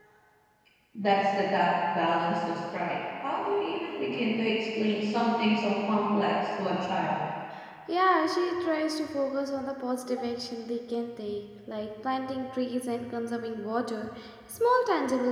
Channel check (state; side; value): identical; both; correlation 1.00